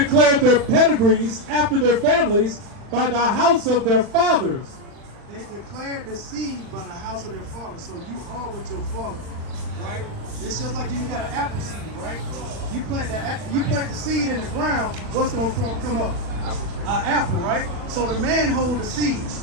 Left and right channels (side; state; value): left; late; 40 ms